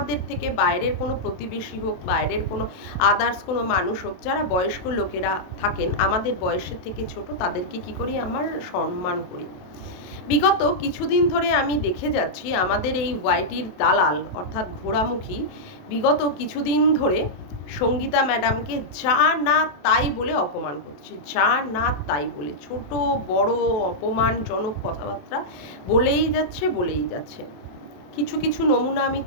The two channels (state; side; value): late; right; 27 ms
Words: থেকে বাইরের কোনো প্রতিবেশী হোক, বাইরের কোনো আদার্স কোনো মানুষ হোক, যারা বয়স্ক লোকেরা থাকেন আমাদের বয়সের থেকে ছোট, তাদেরকে কি করি, আমার সম্মান করি। বিগত কিছুদিন ধরে আমি দেখে যাচ্ছি আমাদের এই ওয়াইটির দালাল, অর্থাৎ ঘোড়ামুখী, বিগত কিছুদিন ধরে সঙ্গীতা ম্যাডামকে যা না তাই বলে অপমান করছে। যা না তাই বলে, ছোট বড় অপমানজনক কথাবার্তা বলেই যাচ্ছে। কিছু কিছু নমুনা আমি